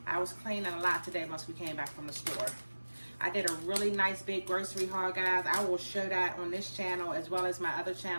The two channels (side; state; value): both; inverted; correlation -1.00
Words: I was cleaning a lot today once we came back from the store. I did a really nice big grocery haul, guys. I will show that on this channel as well as my other